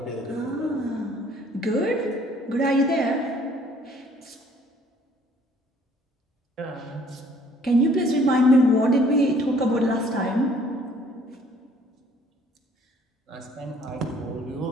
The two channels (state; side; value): normal; both; correlation 0.59